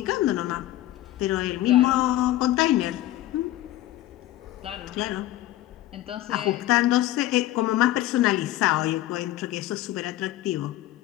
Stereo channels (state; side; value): quieter; right; 15.0 dB